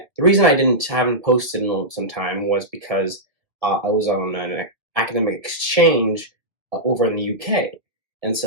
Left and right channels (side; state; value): left; late; 1.9 ms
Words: reason I didn't haven't posted in some time was because I was on an academic exchange over in the UK, and